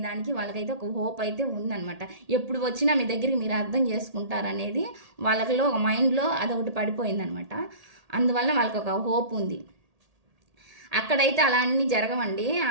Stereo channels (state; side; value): late; left; 1.8 ms